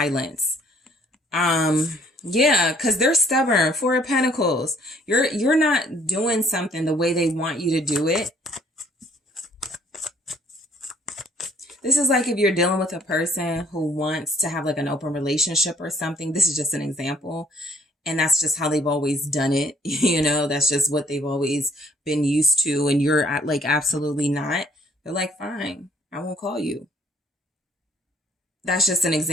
Yeah, because they're stubborn. 4 of Pentacles. You're not doing something the way they want you to do it. This is like if you're dealing with a person who wants to have like an open relationship or something. This is just an example. And that's just how they've always done it. That's just what they've always been used to. And you're like, absolutely not. They're like, fine, I won't call you. That's just an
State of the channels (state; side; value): normal; both; correlation 0.61